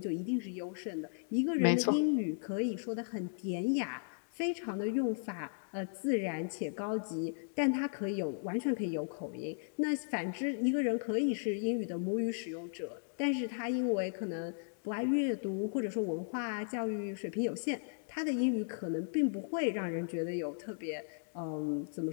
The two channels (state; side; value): silent; right; digital silence